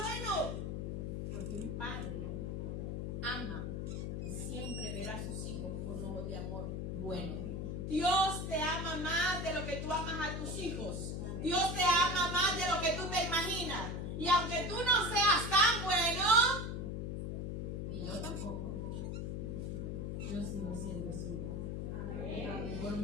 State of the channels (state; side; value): noise; left; hum, 3 dB below the sound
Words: Porque un padre ama y siempre verá a sus hijos con ojos de amor bueno. Dios te ama más de lo que tú amas a tus hijos. Dios te ama más de lo que tú te imaginas. Y aunque tú no seas tan bueno, ni yo tampoco, yo sigo siendo suyo. Por